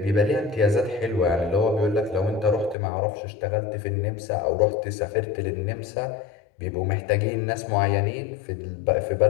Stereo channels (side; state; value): right; drops out; at 2.8 s